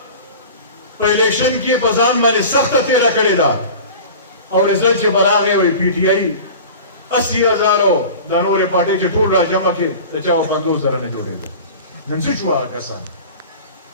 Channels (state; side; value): inverted; both; correlation -0.37